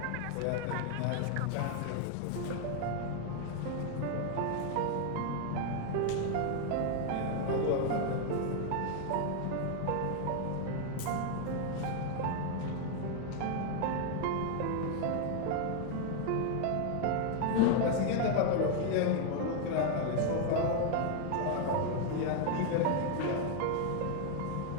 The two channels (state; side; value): different; both; correlation 0.00